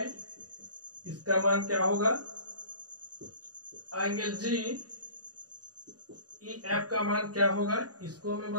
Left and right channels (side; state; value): left; late; 0.68 ms